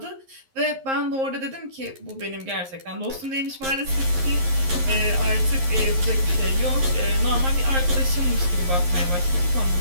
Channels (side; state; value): left; late; 11 ms